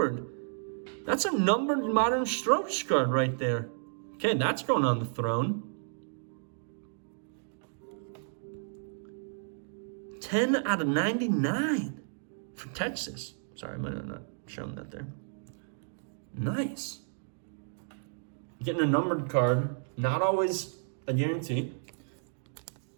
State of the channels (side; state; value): left; silent; digital silence